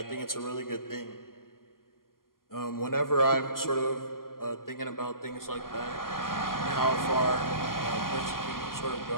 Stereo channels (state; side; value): late; right; 0.92 ms